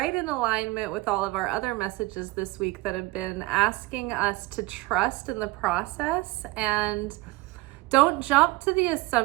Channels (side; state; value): left; quieter; 20.9 dB